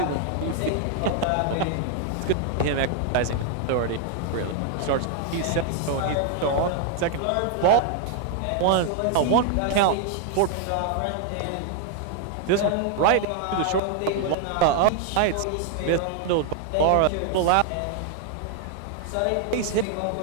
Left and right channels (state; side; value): different; both; correlation 0.00